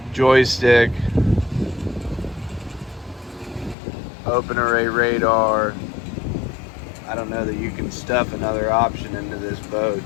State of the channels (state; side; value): drops out; right; at 3.8 s